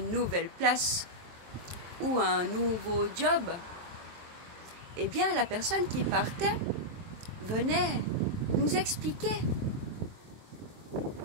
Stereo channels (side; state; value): left; late; 23 ms